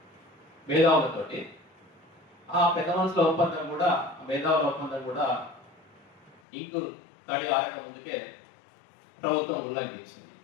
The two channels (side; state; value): right; drops out; at 6.4 s